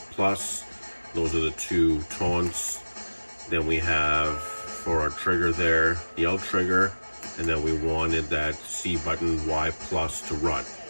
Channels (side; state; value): both; inverted; correlation -1.00